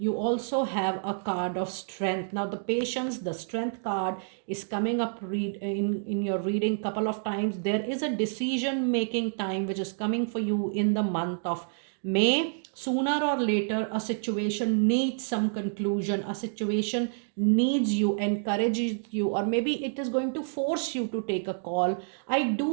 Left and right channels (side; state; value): left; silent; digital silence